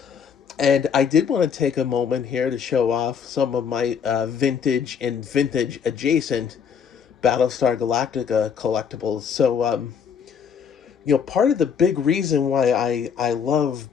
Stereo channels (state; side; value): quieter; right; 7.1 dB